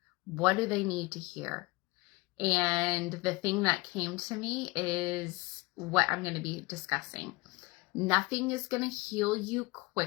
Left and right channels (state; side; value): quieter; right; 23.9 dB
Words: What do they need to hear? And the thing that came to me is what I'm going to be discussing. Nothing is going to heal you